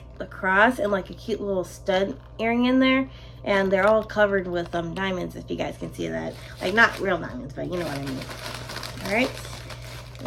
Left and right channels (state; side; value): identical; both; correlation 1.00